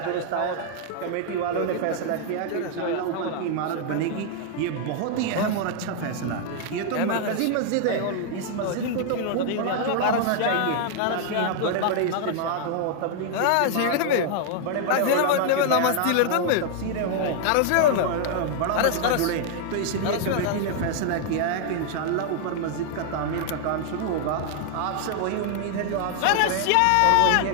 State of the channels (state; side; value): different; both; correlation 0.00